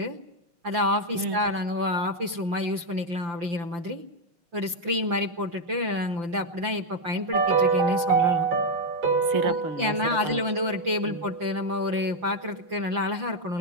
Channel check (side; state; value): left; late; 5.8 ms